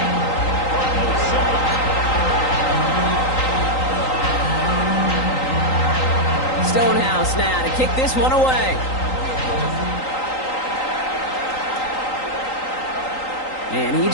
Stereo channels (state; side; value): late; right; 3.9 ms